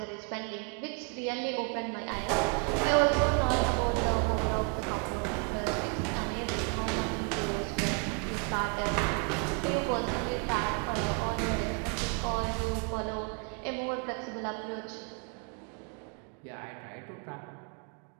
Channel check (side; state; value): left; quieter; 36.1 dB